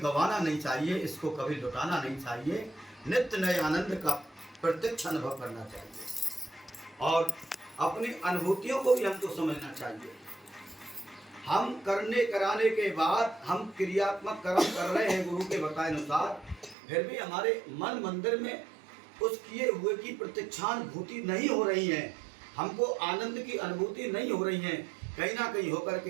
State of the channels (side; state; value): left; drops out; at 16.8 s